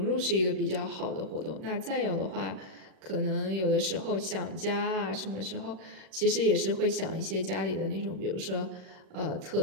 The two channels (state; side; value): late; left; 38 ms